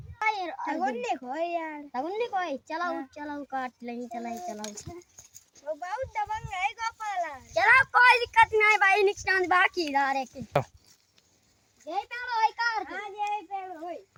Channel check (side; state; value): both; identical; correlation 1.00